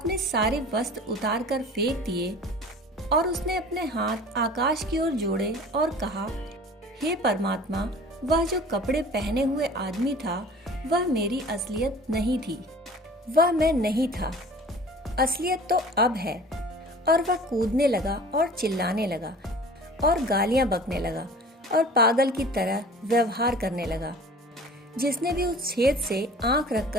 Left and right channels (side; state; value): both; normal; correlation 0.44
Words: सारे वस्त्र उतार कर फेंक दिए और उसने अपने हाथ आकाश की ओर जोड़े और कहा, हे परमात्मा, वह जो कपड़े पहने हुए आदमी था वह मेरी असलियत नहीं थी, वह मैं नहीं था, असलियत तो अब है। और वह कूदने लगा और चिल्लाने लगा और गालियां बकने लगा और पागल की तरह व्यवहार करने लगा। जिसने भी उस छेद से आंख